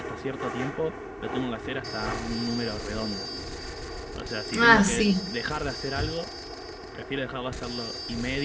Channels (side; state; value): both; identical; correlation 1.00